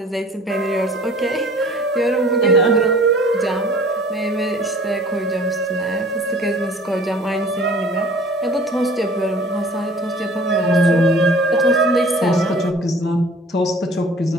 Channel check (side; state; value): both; normal; correlation 0.48